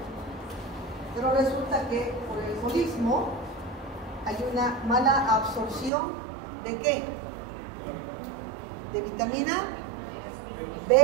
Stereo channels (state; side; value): drops out; left; at 5.9 s